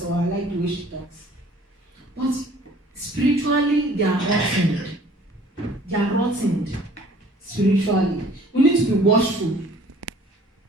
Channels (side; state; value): both; normal; correlation 0.53